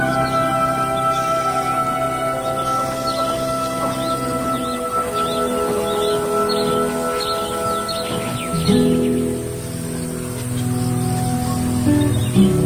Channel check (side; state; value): both; identical; correlation 1.00